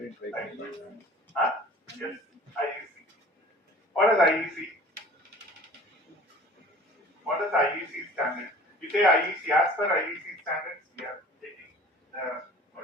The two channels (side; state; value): both; normal; correlation 0.46